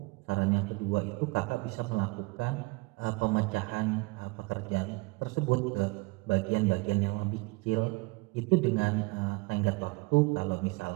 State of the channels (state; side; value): quieter; left; 25.4 dB